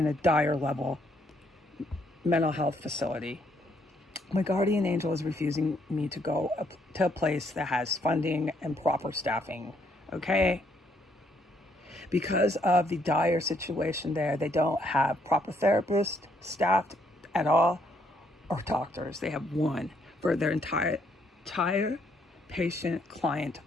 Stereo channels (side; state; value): both; normal; correlation 0.71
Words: a dire level mental health facility. My guardian angel is refusing me to go to a place that has funding and proper staffing, okay? Because of the dire situation there, they don't have proper therapists staffed at all or doctors. They have one for their entire patient client